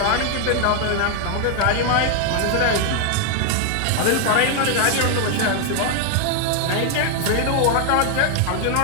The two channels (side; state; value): both; different; correlation 0.00